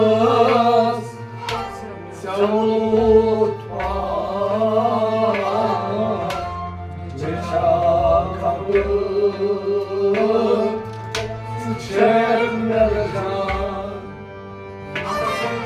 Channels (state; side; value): identical; both; correlation 1.00